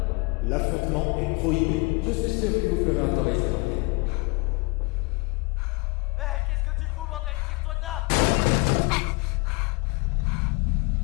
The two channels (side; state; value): right; quieter; 27.6 dB